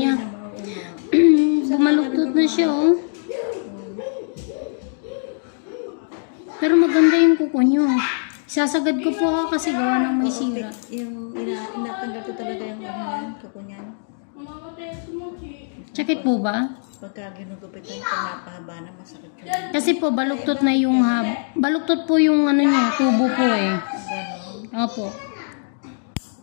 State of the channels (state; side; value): silent; right; digital silence